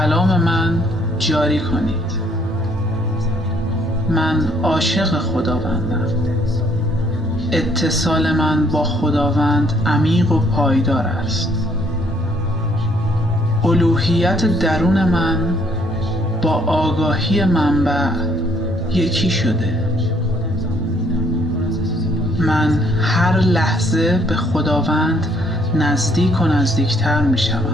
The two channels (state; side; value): normal; both; correlation 0.66